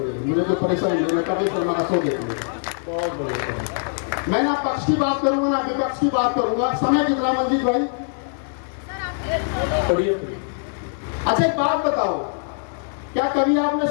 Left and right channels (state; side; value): silent; right; digital silence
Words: है, मुझे कोई परेशानी नहीं, मैं कपिल शर्मा का शो देख लूंगा। बहुत बढ़िया। मैं ना पक्ष की बात करूंगा ना विपक्ष की बात करूंगा। समय कितना मंजीत भाई? अच्छा एक बात बताओ, क्या कभी आपने